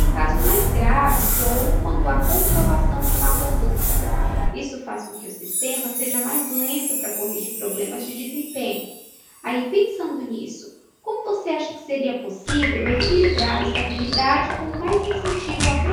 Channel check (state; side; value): identical; both; correlation 1.00